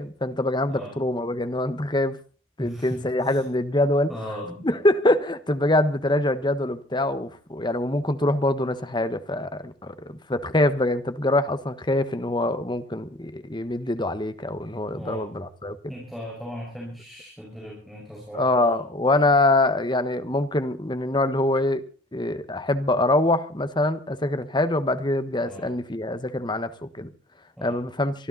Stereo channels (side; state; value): both; normal; correlation 0.53